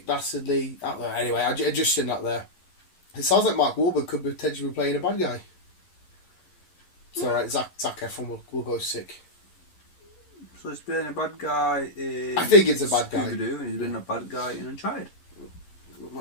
Dastardly out there. Anyway, I just seen that there. It sounds like Mark Wahlberg could potentially be playing a bad guy. It's alright, Zac Efron will go sick. So he's been a bad guy in... I think it's a bad guy. Scooby-Doo, and he's been a bad guy in Uncharted.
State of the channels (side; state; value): right; late; 11 ms